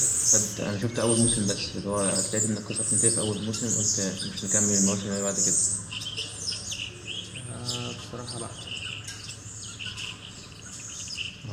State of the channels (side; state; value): both; identical; correlation 1.00